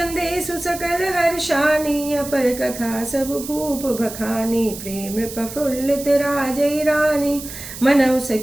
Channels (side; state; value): right; noise; hiss, 11 dB below the sound